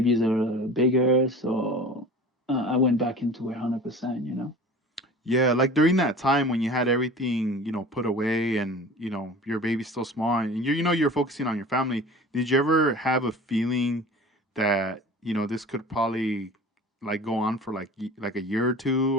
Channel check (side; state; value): both; normal; correlation 0.39